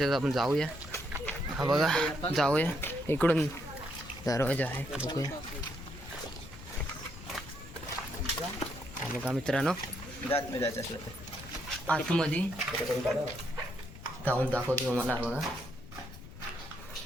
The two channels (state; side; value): noise; left; rumble, 15 dB below the sound